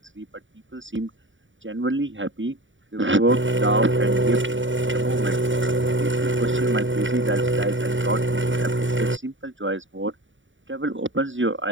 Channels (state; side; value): late; left; 0.56 ms